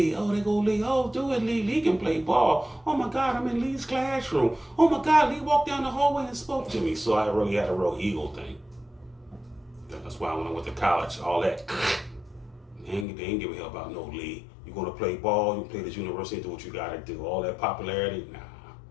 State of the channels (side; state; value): right; drops out; at 13.1 s